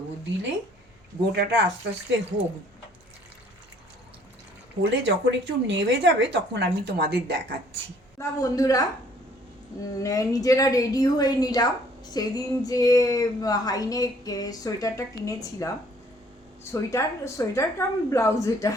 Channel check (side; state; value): both; normal; correlation 0.59